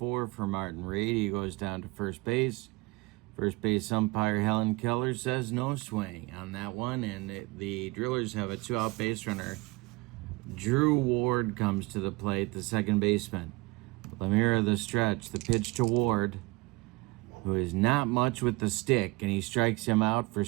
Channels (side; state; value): left; quieter; 23.5 dB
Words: for Martin Reed. He goes down to first base. First base umpire Helen Keller says no swing on that one, and the Drillers have a 2-out base runner. Drew Ward comes to the plate, the second baseman. Lamira the stretch. The pitch to Ward, who is not much with the stick, and he strikes him out for